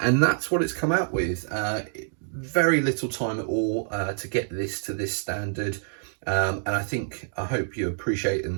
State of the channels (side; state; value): left; silent; digital silence